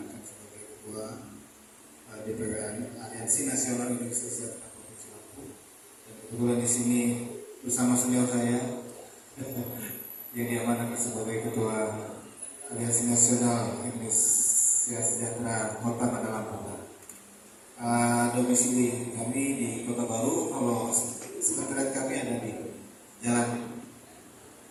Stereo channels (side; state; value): both; identical; correlation 1.00